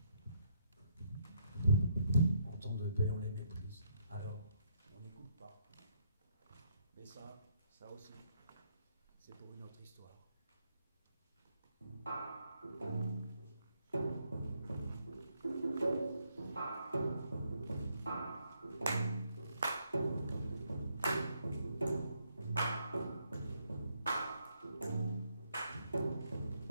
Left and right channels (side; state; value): both; inverted; correlation -0.73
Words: en temps de paix on les méprise, alors on n'écoute pas. Mais ça aussi, c'est pour une autre histoire.